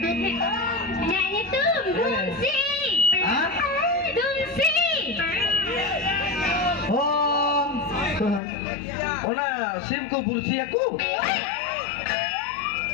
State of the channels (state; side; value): drops out; right; at 8.4 s